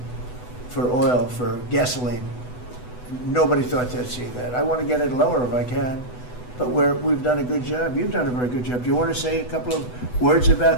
for oil, for gasoline. Nobody thought they'd see that. I want to get it lower if I can, but we've done a good job. You've done a very good job. Do you want to say a couple of words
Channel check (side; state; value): right; late; 8.1 ms